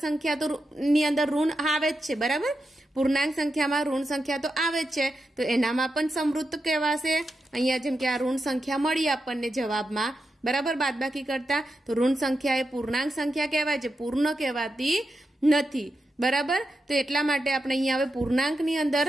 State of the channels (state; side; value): normal; both; correlation 0.88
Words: સંખ્યા તો ની અંદર ઋણ આવે જ છે, બરાબર. પૂર્ણાંક સંખ્યામાં ઋણ સંખ્યા તો આવે જ છે તો એનામાં પણ સંવૃત કહેવાશે. અહીંયા જેમ કે આ ઋણ સંખ્યા મળી આપણને જવાબમાં, બરાબર, બાદબાકી કરતા, તો ઋણ સંખ્યા એ પૂર્ણાંક સંખ્યા કહેવાય છે, પૂર્ણ કહેવાતી નથી, બરાબર. તો એટલા માટે આપણે અહીંયા હવે પૂર્ણાંકની અંદર